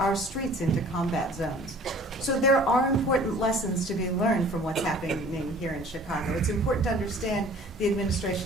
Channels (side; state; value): both; normal; correlation 0.50